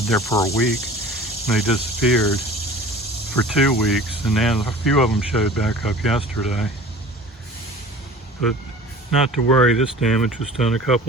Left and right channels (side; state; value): both; normal; correlation 0.42